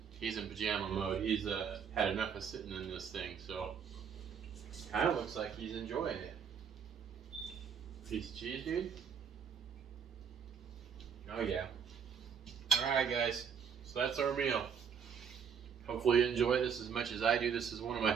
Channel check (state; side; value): quieter; left; 7.1 dB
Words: He's in pajama mode. He's had enough of sitting in this thing, so kind of looks like he's enjoying it. Piece of cheese, dude. Oh yeah. All right, guys. So that's our meal. Hopefully you enjoy this as much as I do. This is one of my